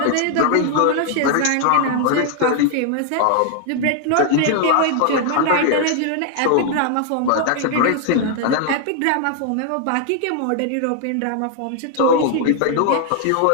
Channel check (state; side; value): different; both; correlation 0.00